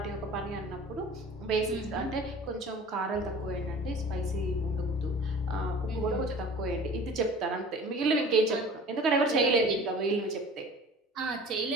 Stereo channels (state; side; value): normal; both; correlation 0.43